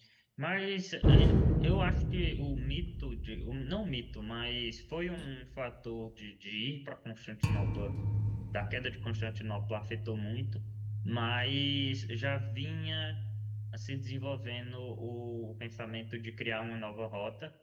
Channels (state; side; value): identical; both; correlation 1.00